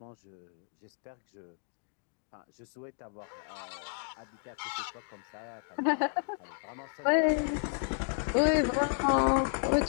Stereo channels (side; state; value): right; silent; 56 dB below the other